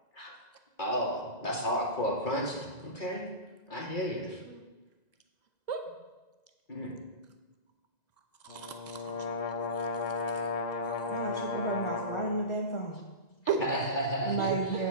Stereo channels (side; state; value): right; late; 2.0 ms